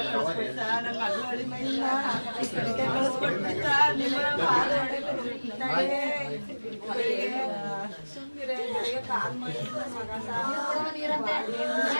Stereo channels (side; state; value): both; inverted; correlation -1.00